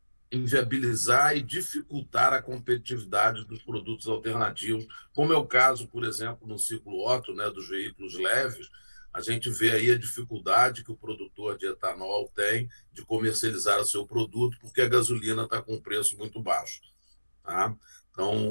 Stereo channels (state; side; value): inverted; both; correlation -1.00